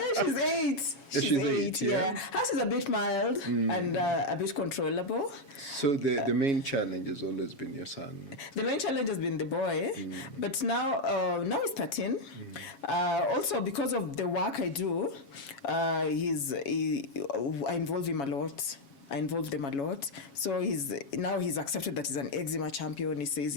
She's 8. She's 8. Yeah, hers is a bit mild and a bit controllable. So the main challenge has always been your son. The main challenge has been the boy, but now he's 13. Also, because of the work I do, I involve him a lot. I involve them a lot. So he's accepted that he's an eczema champion. He says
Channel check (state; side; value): late; right; 7.2 ms